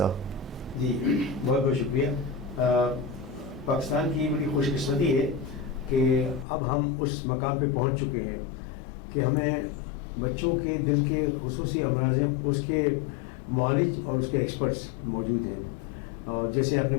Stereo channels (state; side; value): drops out; right; at 6.5 s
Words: जी, बहुत बहुत शुक्रिया। पाकिस्तान की बड़ी खुशकिस्मती है कि अब हम उस मकाम पे पहुंच चुके हैं कि हमें बच्चों के दिल के खुसूसी अमराज हैं, उसके मौलिज और उसके एक्सपर्ट्स मौजूद हैं। और जैसे आपने